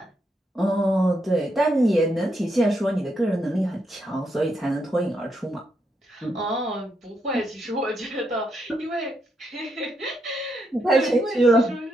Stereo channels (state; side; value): normal; both; correlation 0.80